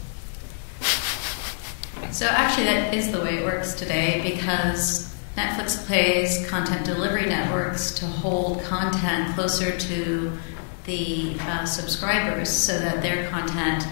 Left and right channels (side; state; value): right; silent; digital silence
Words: So actually, that is the way it works today, because Netflix pays content delivery networks to hold content closer to the subscribers so that their content